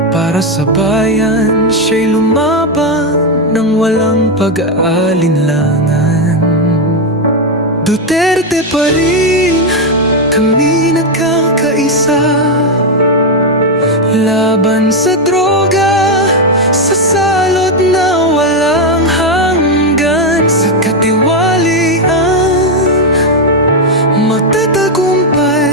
para sa bayan siya'y lumaban nang walang pag-aalinlangan. Duterte pa rin, kami nagkakaisa. Laban sa droga, sa salot na walang hanggan. Sa katiwalian,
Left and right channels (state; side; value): normal; both; correlation 0.05